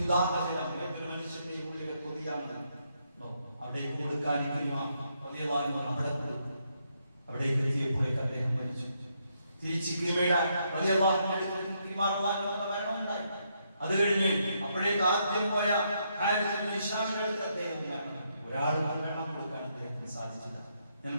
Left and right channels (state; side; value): inverted; both; correlation -0.77